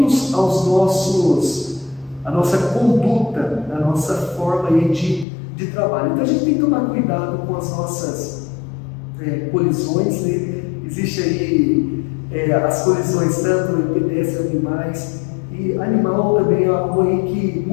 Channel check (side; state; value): right; drops out; at 5.2 s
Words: à nossa conduta, à nossa forma aí de trabalho. Então a gente tem que tomar cuidado com as nossas colisões, né? Existe aí as colisões tanto em pedestres, animais, e animal também é algo aí que